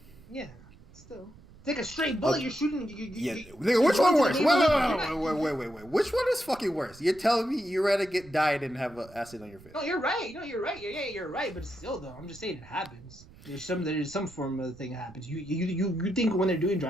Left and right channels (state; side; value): noise; right; rumble, 22 dB below the sound